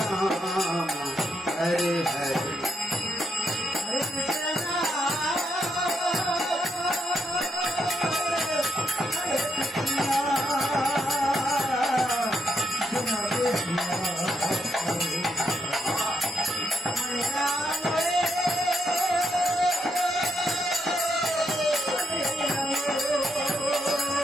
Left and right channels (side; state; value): both; normal; correlation 0.79